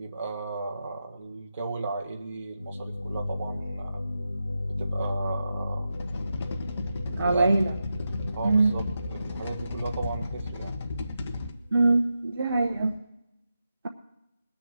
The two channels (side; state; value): both; inverted; correlation -0.89